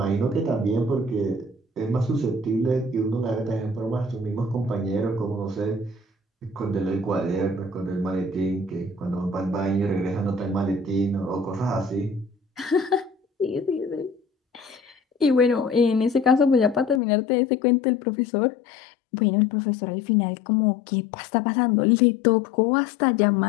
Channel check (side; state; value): right; drops out; at 17.0 s